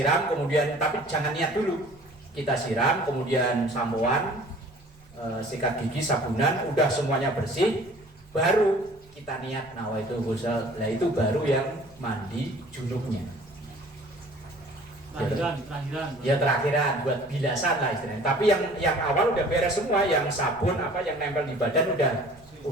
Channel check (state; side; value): noise; right; rumble, 27 dB below the sound